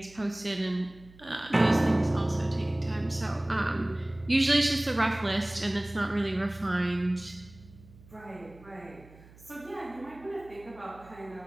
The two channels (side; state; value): right; noise; hum, 23 dB below the sound